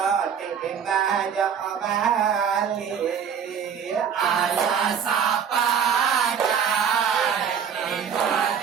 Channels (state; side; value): quieter; left; 7.6 dB